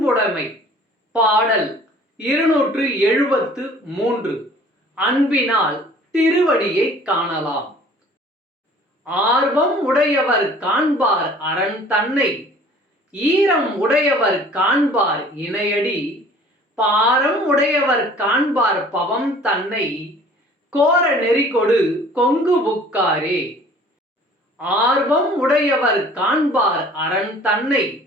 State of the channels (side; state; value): both; normal; correlation 0.50